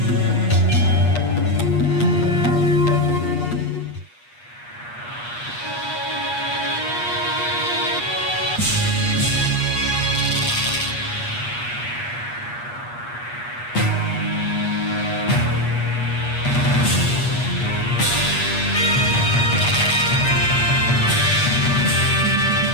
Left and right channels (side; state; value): right; late; 8.3 ms